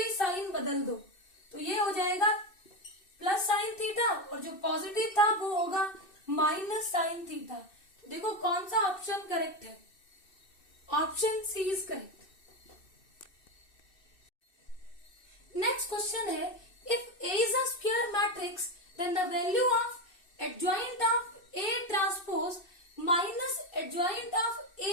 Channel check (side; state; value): right; late; 2.6 ms